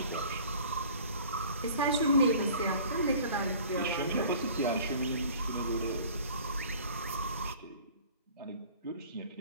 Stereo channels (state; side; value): inverted; both; correlation -0.48